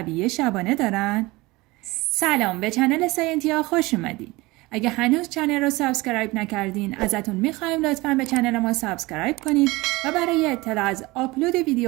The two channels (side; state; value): left; quieter; 21.8 dB